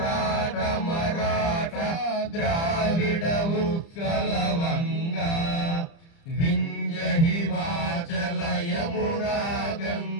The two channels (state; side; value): late; right; 30 ms